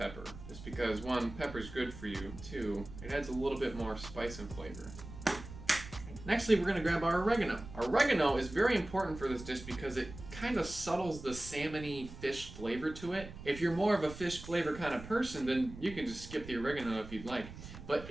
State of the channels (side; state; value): right; noise; rumble, 13 dB below the sound